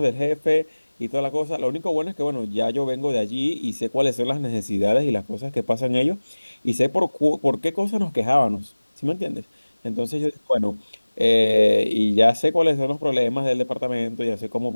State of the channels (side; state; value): both; inverted; correlation -1.00